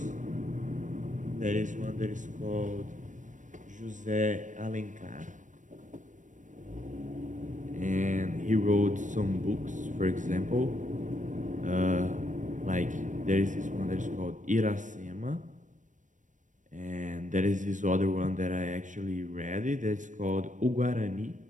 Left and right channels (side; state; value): left; late; 0.37 ms